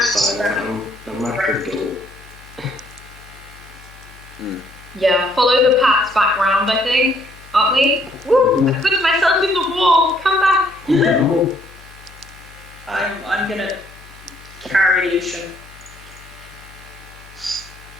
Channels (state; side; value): noise; left; hum, 22 dB below the sound